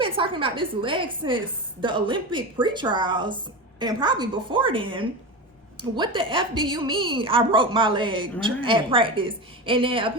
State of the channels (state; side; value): normal; both; correlation 0.23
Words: been talking about this leg since the Olympic pre-trials and probably before then, what the F do you mean I broke my leg at practice? And then